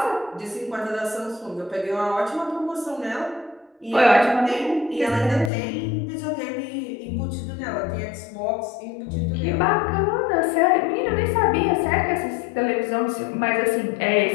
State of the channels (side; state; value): right; drops out; at 5.5 s